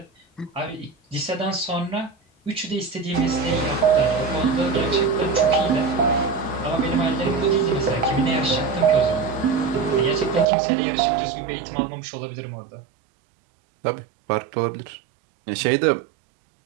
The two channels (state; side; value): drops out; left; at 10.5 s